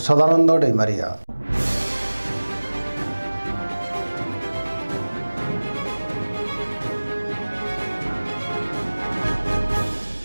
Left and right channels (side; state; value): both; inverted; correlation -1.00